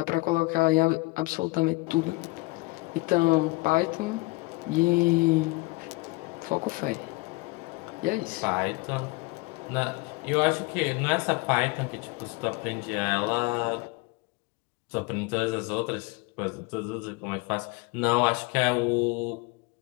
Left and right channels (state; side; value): quieter; right; 25.0 dB